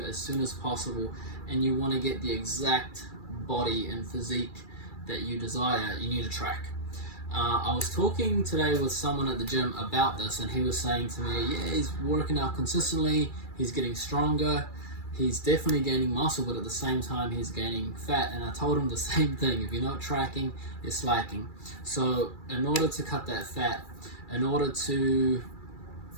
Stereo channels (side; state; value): right; late; 2.3 ms